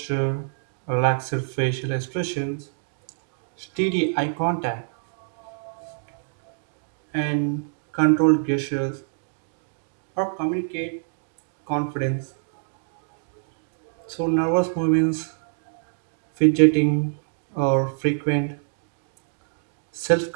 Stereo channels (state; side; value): silent; left; digital silence